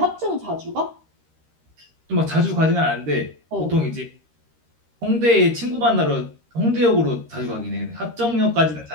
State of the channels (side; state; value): left; late; 13 ms